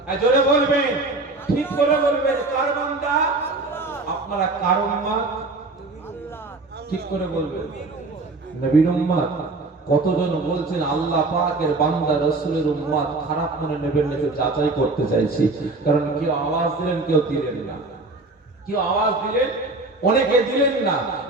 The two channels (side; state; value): left; quieter; 3.2 dB